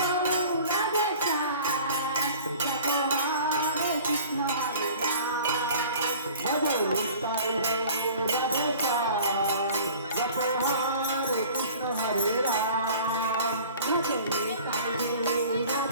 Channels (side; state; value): both; inverted; correlation -0.46